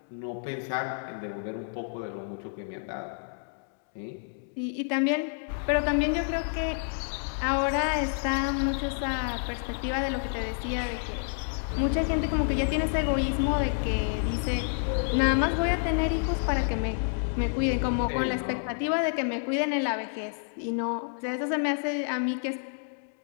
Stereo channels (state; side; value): silent; right; digital silence